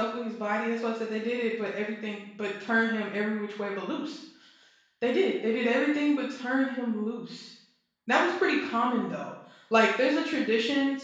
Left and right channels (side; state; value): both; identical; correlation 1.00